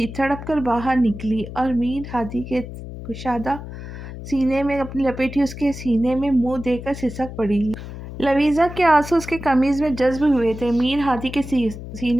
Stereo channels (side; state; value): left; noise; hum, 11 dB below the sound